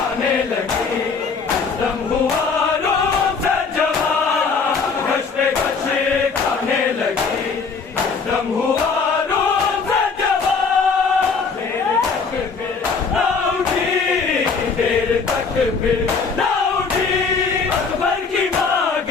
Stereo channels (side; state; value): right; quieter; 5.1 dB